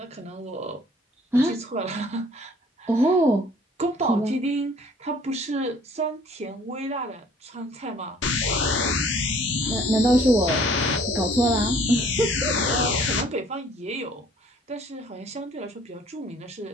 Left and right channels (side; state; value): both; normal; correlation 0.56